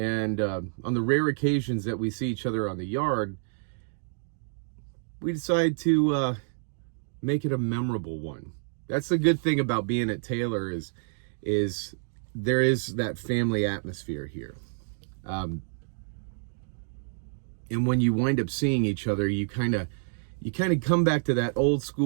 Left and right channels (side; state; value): left; silent; digital silence